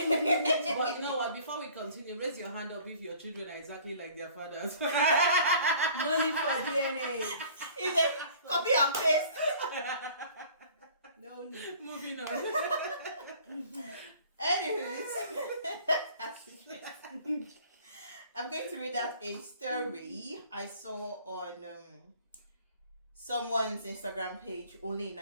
know what? Before we continue, raise your hand up if your children are exactly like their fathers. no need for DNA. Is it copy and paste? No need. Moving on. Anyways, I'm going to read out a story I saw on someone's Instagram page, only in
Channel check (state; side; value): inverted; both; correlation -0.51